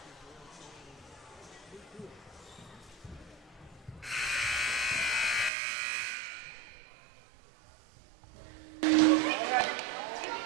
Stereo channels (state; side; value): drops out; left; at 5.5 s